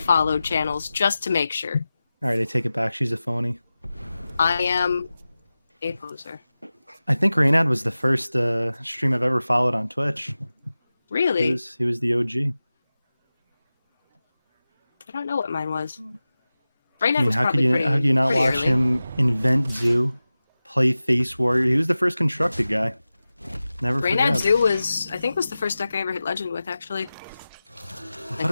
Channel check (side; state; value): both; inverted; correlation -0.96